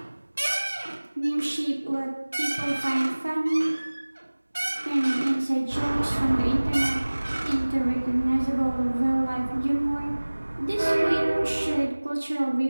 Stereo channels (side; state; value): both; inverted; correlation -1.00